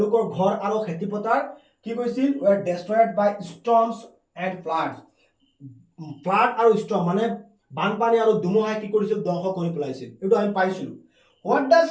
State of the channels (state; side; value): identical; both; correlation 1.00